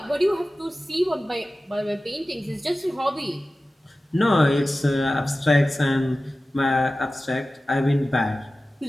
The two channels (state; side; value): normal; both; correlation 0.96